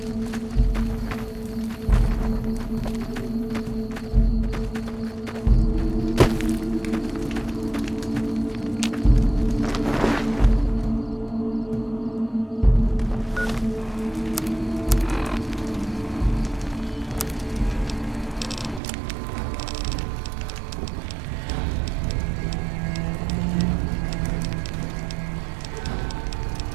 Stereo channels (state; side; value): drops out; left; at 18.8 s